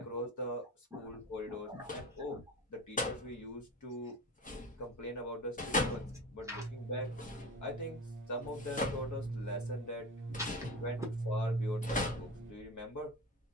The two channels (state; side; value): normal; both; correlation 0.30